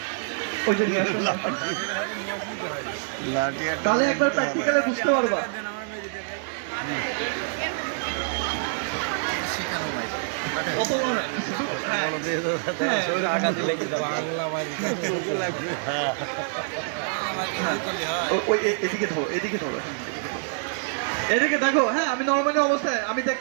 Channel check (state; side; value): silent; left; digital silence